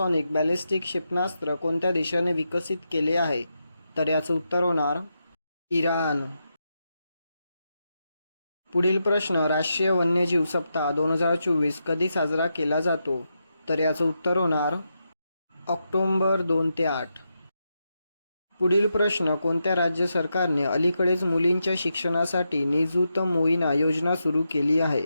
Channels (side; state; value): both; inverted; correlation -0.85